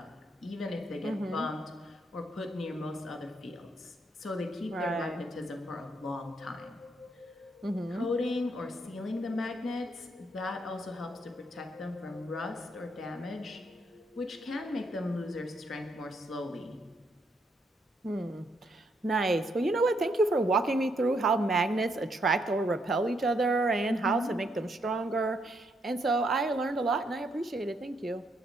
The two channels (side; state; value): both; normal; correlation 0.75